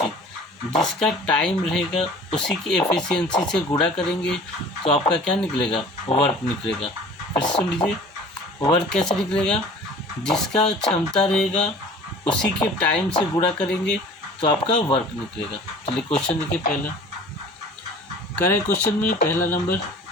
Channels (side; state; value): both; normal; correlation 0.45